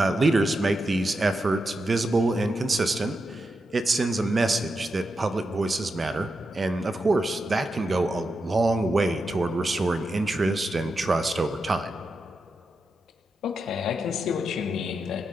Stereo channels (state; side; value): normal; both; correlation 0.87